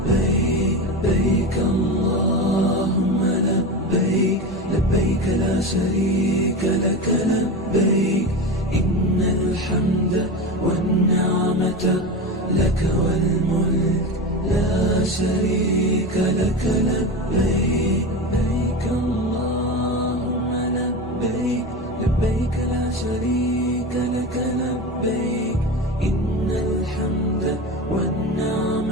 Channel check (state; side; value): normal; both; correlation 0.24